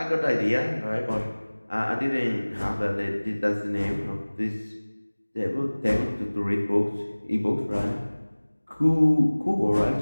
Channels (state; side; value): inverted; both; correlation -1.00